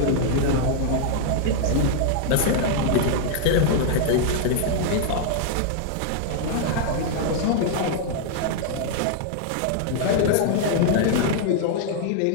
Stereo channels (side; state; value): both; different; correlation -0.01